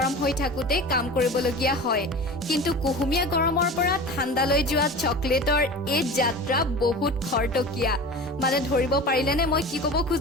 হৈ থাকোঁতে কাম কৰিবলগীয়া হয়, কিন্তু কুহুমীয়া গৰমৰ পৰা ঠাণ্ডালৈ যোৱা চকলেটৰ এই যাত্ৰা বহুত খৰতকীয়া। মানে ধৰিব পাৰিলেনে মই কি ক'ব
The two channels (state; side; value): normal; both; correlation 0.34